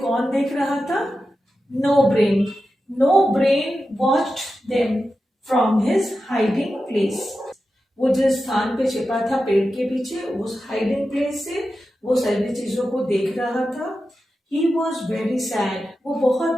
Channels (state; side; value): normal; both; correlation 0.91